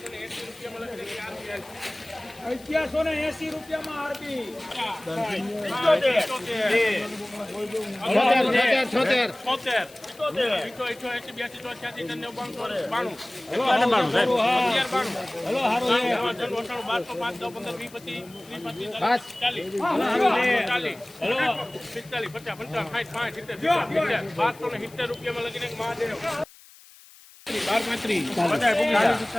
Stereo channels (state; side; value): noise; left; hiss, 23 dB below the sound